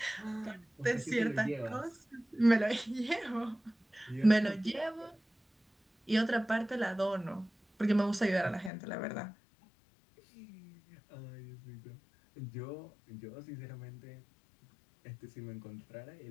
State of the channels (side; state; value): right; drops out; at 8.7 s